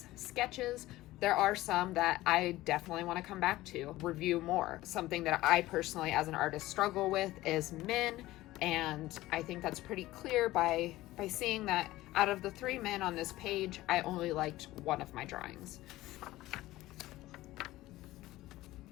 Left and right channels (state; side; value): quieter; right; 17.0 dB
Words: sketches, there are some that I definitely want to come back to, review more. Something that I personally as an artist struggle with is men, and I think that's pretty clear by seeing that out of the 3 men on this page, I only liked one of my drawings.